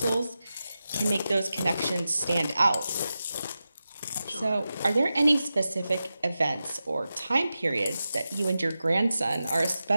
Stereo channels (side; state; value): both; inverted; correlation -0.92